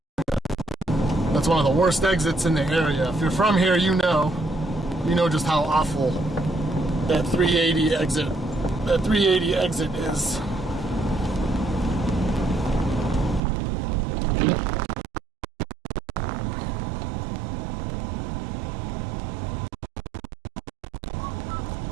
That's one of the worst exits in the area. If you're from here, you know just how awful that 380 exit is.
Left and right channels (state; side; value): drops out; left; at 13.4 s